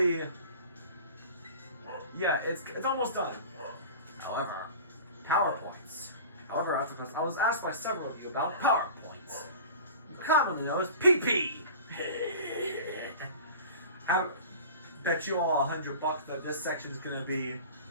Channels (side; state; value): both; inverted; correlation -0.38